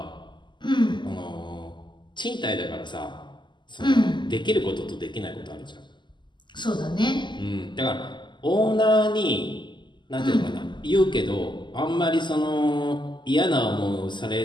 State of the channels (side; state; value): right; late; 0.22 ms